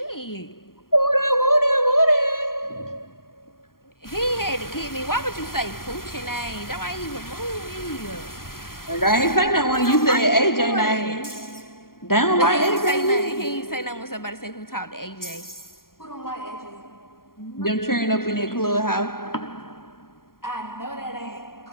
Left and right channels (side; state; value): right; late; 0.92 ms